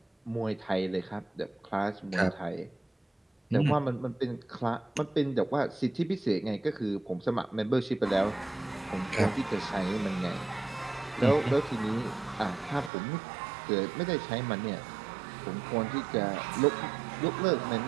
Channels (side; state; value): left; drops out; at 12.9 s